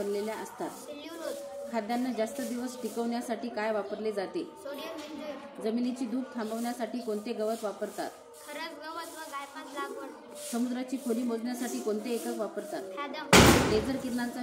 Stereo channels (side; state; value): both; identical; correlation 1.00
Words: असतात? सेल्युलोज. खाद्यान्न जास्त दिवस टिकवण्यासाठी काय वापरले जाते? सोडियम बेंझोएट. जमिनीची धूप थांबवण्यासाठी कोणते गवत वापरतात? खरस गवत व गायपात लागवड. समुद्राची खोली मोजण्यासाठी कोणते एकक वापरतात? फॅदम. लेझर